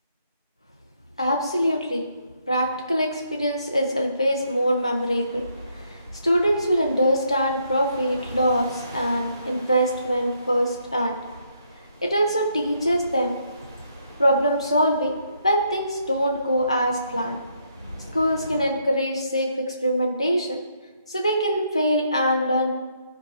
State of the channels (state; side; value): inverted; both; correlation -0.73